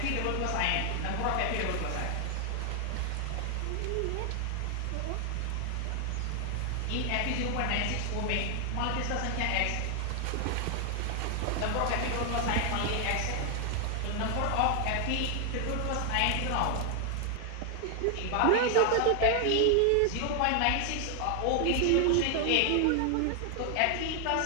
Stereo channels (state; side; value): different; both; correlation 0.00